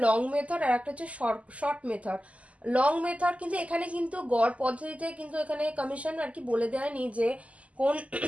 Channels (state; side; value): late; left; 0.067 ms